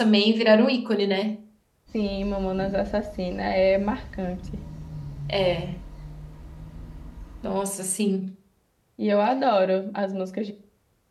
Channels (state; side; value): identical; both; correlation 1.00